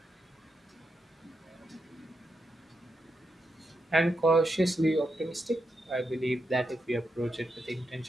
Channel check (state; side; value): normal; both; correlation 0.84